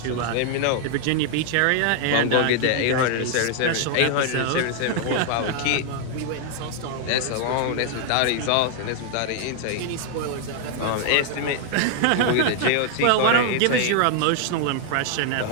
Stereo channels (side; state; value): both; different; correlation 0.00